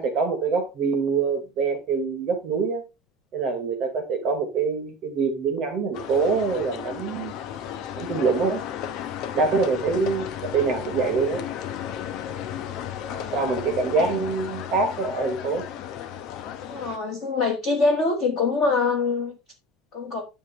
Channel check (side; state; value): both; normal; correlation 0.34